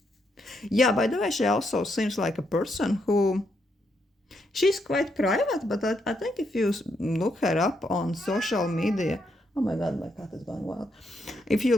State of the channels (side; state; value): both; normal; correlation 0.78